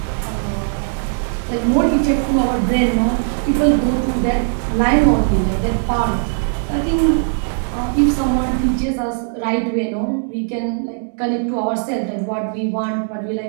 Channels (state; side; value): silent; left; digital silence